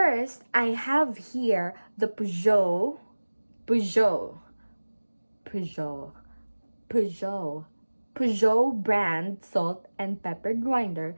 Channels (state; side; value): inverted; both; correlation -1.00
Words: I have here the Peugeot, Peugeot brand salt and pepper grinder.